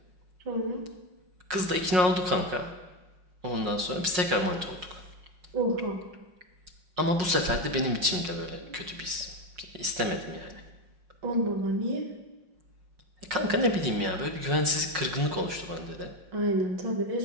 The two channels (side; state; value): left; late; 5.5 ms